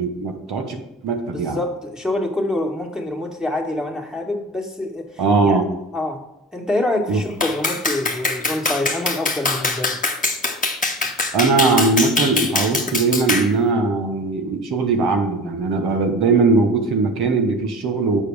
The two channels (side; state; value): both; normal; correlation 0.34